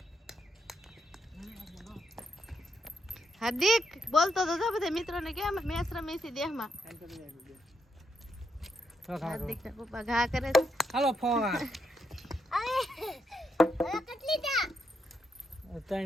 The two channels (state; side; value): normal; both; correlation 0.80